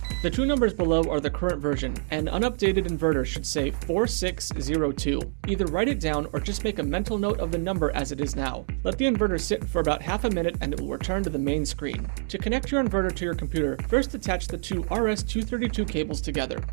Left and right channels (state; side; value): silent; left; digital silence